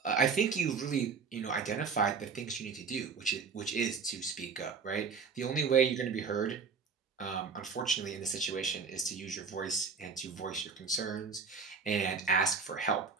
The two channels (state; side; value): quieter; left; 5.4 dB